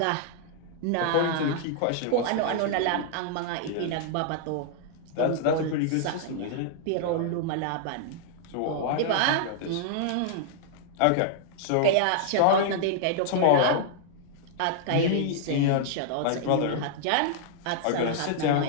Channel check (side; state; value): both; different; correlation -0.01